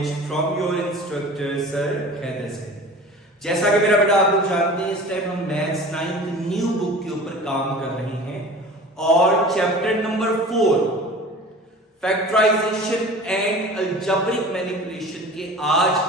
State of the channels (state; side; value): normal; both; correlation 0.40